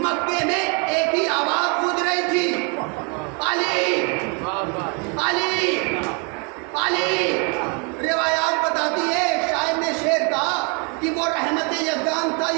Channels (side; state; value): left; quieter; 34.9 dB